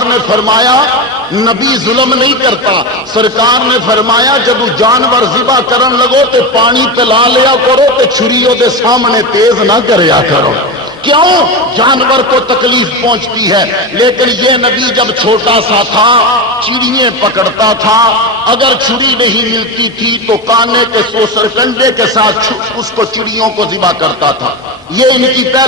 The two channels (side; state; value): both; normal; correlation 0.19